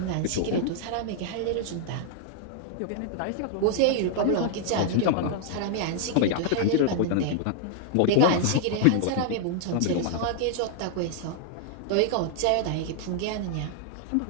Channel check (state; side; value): different; both; correlation 0.00